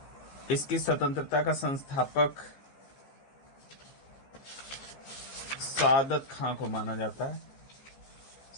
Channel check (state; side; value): late; right; 15 ms